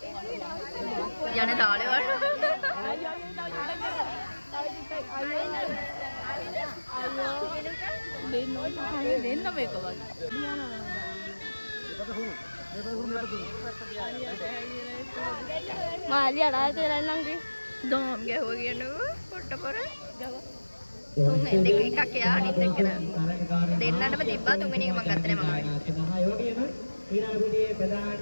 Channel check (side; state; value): both; inverted; correlation -1.00